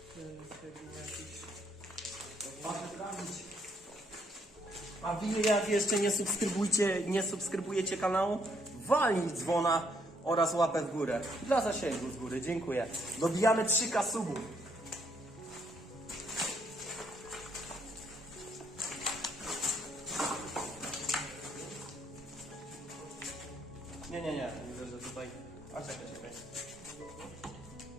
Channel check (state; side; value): normal; both; correlation 0.71